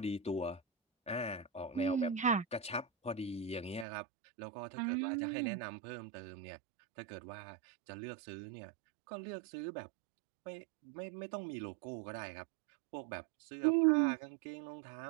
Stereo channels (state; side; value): drops out; left; at 3.9 s